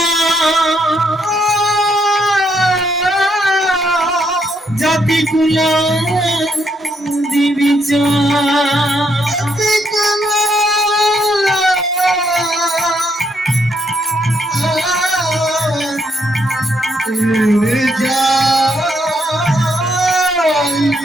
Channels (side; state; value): both; normal; correlation 0.75